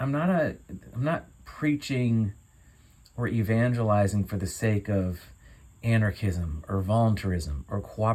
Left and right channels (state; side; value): identical; both; correlation 1.00